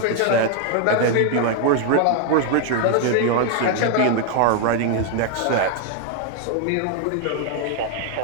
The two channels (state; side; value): different; both; correlation 0.00